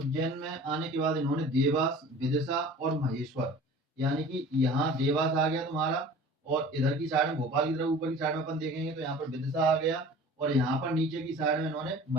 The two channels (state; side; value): normal; both; correlation 0.43